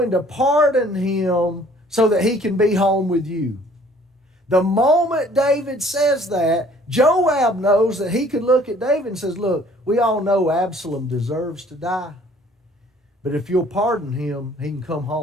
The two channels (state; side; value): normal; both; correlation 0.56